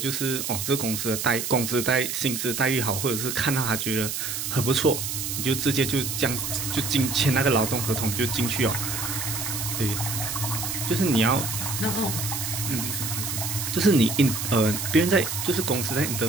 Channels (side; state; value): right; noise; hiss, 3 dB below the sound